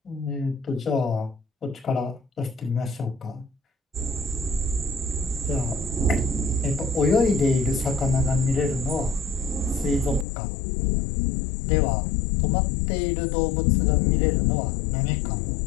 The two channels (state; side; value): drops out; right; at 10.2 s